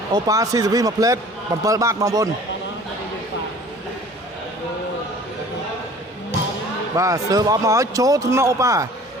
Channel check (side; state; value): both; normal; correlation 0.48